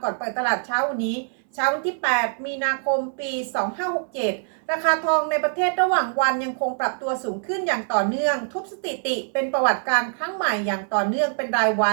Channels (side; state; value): left; silent; 63 dB below the other